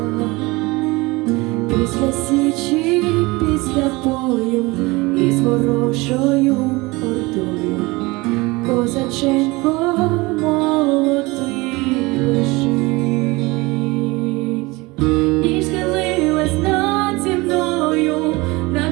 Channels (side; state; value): left; quieter; 23.2 dB